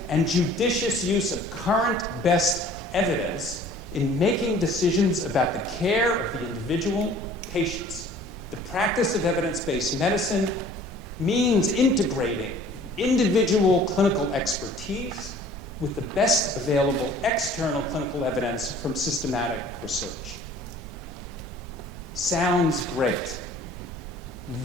and judicious use of current best evidence in making decisions about the care of the individual patients. The practice of evidence-based medicine means integrating individual clinical expertise with the best available external clinical evidence from systematic research. Sounds great.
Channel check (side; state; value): both; normal; correlation 0.50